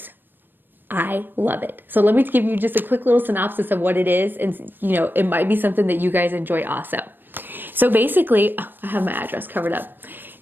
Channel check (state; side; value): late; left; 0.094 ms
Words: I love it. So let me give you just a quick little synopsis of what it is, and it might be something that you guys enjoy also. So basically, I have my address covered up.